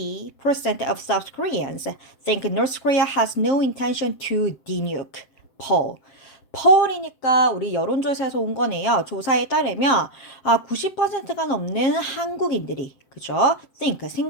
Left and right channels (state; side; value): late; right; 7.6 ms